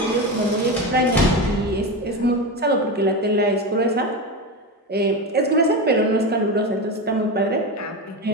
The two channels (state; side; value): normal; both; correlation 0.19